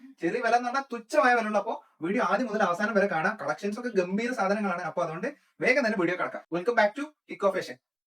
ചെറിയ വില എന്ന് പറഞ്ഞാൽ തുച്ഛമായ വില ഉള്ളൂ. അപ്പോ വീഡിയോ ആദ്യം മുതൽ അവസാനം വരെ കാണാം. കളക്ഷൻസ് ഒക്കെ ഗംഭീര സാധനങ്ങളാണ്. അപ്പൊ അതുകൊണ്ട് വേഗം തന്നെ വീഡിയോ കിടക്കാം. Welcome back to Eco Fashion.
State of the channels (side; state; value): both; identical; correlation 1.00